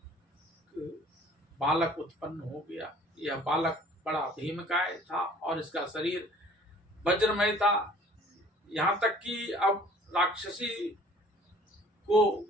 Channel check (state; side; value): normal; both; correlation 0.52